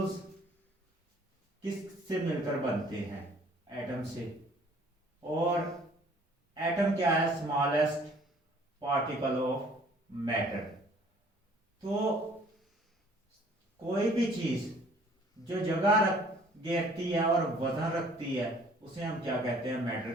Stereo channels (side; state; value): both; normal; correlation 0.56